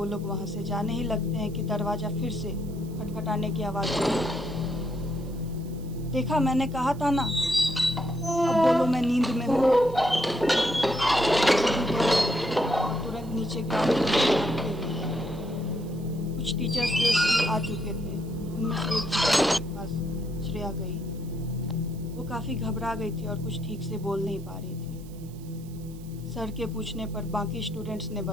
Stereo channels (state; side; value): noise; right; hiss, 24 dB below the sound